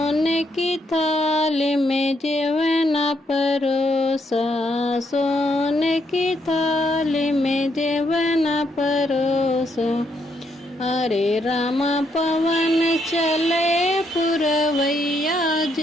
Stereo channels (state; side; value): normal; both; correlation 0.75